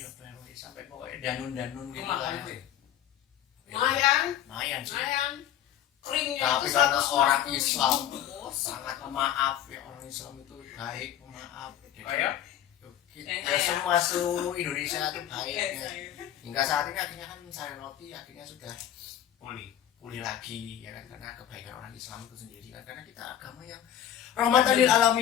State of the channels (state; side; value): quieter; right; 10.9 dB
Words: sampai pokoknya danun gitu lah. Lumayan sih. Keringnya Tapi itu karena orang 150.000. Islam sangat pemaaf ya, orang Islam itu baik, pemaaf. Ya semua seluruh Indonesia itu baik ya. Hingga saat ini akhirnya kan sari roti akhirnya sudah pulih lagi ya kan, karena kebaikan orang Islam itu sendiri kan, karena kita agama yang rahmatan lil